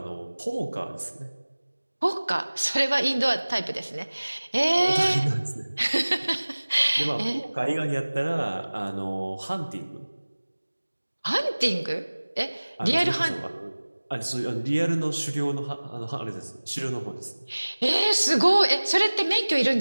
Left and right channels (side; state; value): both; inverted; correlation -1.00